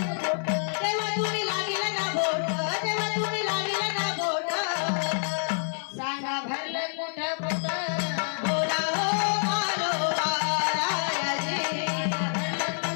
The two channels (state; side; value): silent; right; 56 dB below the other